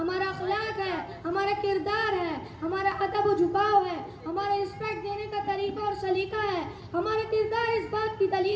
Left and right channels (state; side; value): identical; both; correlation 1.00